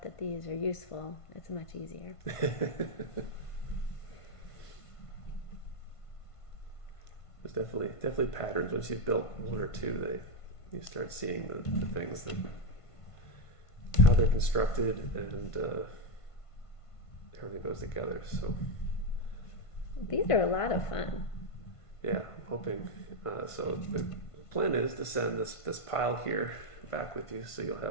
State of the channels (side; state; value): right; late; 1.5 ms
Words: that these are useful, it's much easier. There's definitely patterns. Once you've built one or two, you start seeing the things that how they're constructed and everything goes together. So These are a lot of fun. yeah, I'm hoping. So the plan is to send this pile here back with you, so you'll